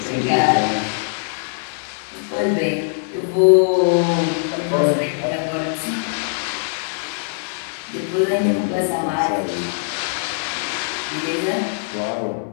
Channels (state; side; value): silent; right; digital silence